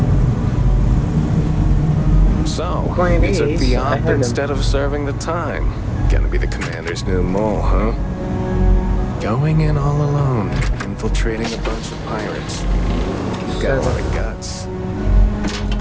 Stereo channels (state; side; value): identical; both; correlation 1.00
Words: So, Point you took is, the I op heard him. instead of serving the time. Gonna be the commander's new mole, huh? Going in all alone, infiltrating a bunch of pirates. You've got a lot of guts.